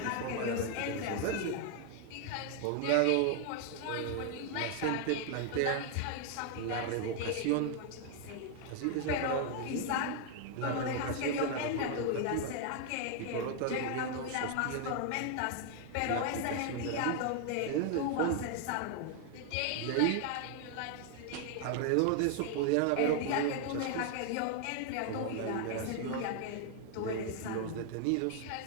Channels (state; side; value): different; both; correlation 0.00